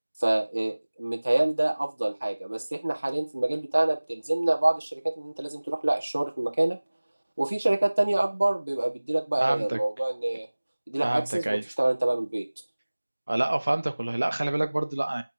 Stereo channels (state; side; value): inverted; both; correlation -1.00